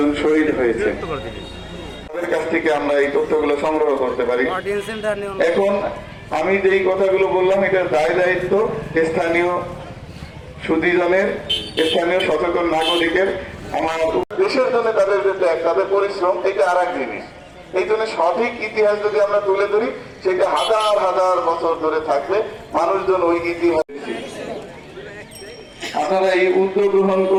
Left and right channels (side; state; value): both; identical; correlation 1.00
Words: শহীদ হয়েছে। তাদের কাছ থেকে আমরা এই তথ্যগুলো সংগ্রহ করতে পারি। এখন আমি যেই কথাগুলো বললাম এটার দায়িত্ব স্থানীয় সুধীজনের, স্থানীয় সচেতন নাগরিকের। আমার দেশের জন্য তাদের যে ত্যাগ, তাদের পরিশ্রম, এটা আর এক জিনিস। এই জন্য সঠিক ইতিহাস যদি আমরা তুলে ধরি, সেটা হাজার হাজার বছর ধরে থাকবে। মানুষজন ওই ইতিহাস, আপনারা এই উদ্যোগ গ্রহণ